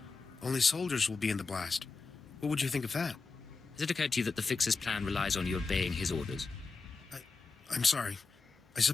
only soldiers will be in the blast. What would you think of that? Has it occurred to you that the Fixer's plan relies on you obeying his orders? I'm sorry. I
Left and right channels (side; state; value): right; quieter; 4.3 dB